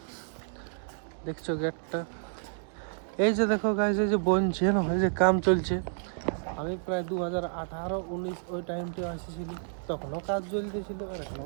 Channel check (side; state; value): left; silent; digital silence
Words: দেখছো গেটটা, এই যে দেখো গাইস, এই যে বনছে না, এই যে কাম চলছে। আমি প্রায় 2018-19 ওই টাইমটা আসেছিলি, তখনও কাজ চলতেছিল আর এখনও